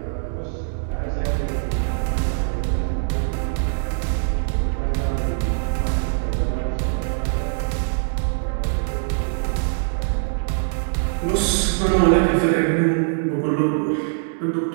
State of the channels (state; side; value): silent; left; 64 dB below the other